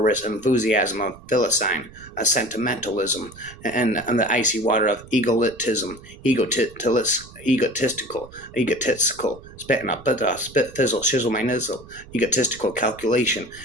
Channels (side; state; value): right; noise; rumble, 20 dB below the sound